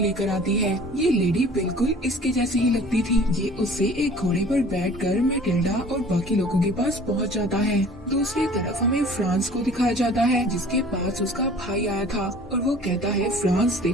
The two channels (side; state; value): both; normal; correlation 0.48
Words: लेकर आती है। ये लेडी बिल्कुल इसके जैसी ही लगती थी। ये उससे एक घोड़े पर बैठकर मैटिल्डा और बाकी लोगों के पास पहुँच जाता है। दूसरी तरफ हमें फ्रांस को दिखाया जाता है जिसके पास उसका भाई आया था और वो कहता है फ्रांस